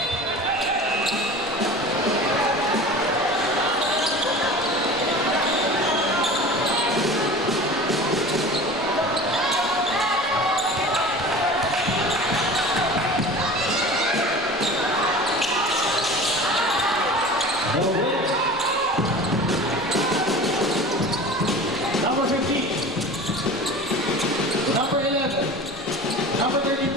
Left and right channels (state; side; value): normal; both; correlation 0.37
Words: No win. Number 15. Number 11. Number